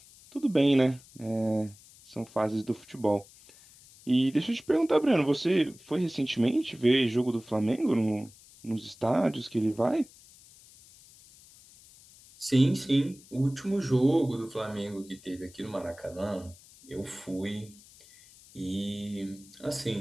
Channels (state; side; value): noise; left; hiss, 24 dB below the sound